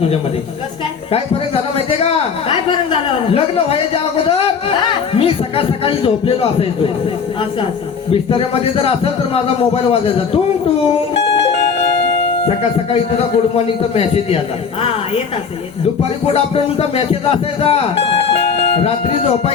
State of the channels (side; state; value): right; quieter; 6.1 dB